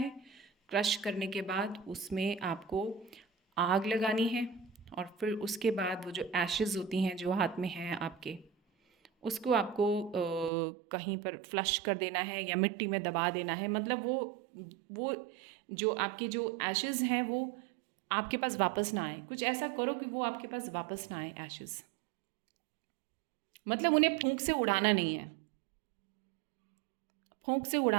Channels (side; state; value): left; drops out; at 10.5 s